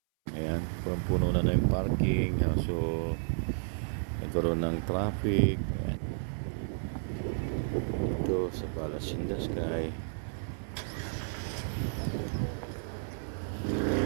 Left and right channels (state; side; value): silent; left; 56 dB below the other